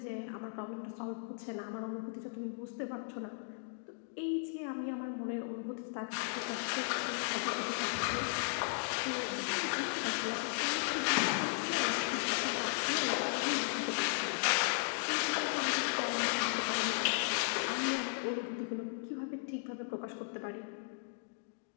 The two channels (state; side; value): silent; right; digital silence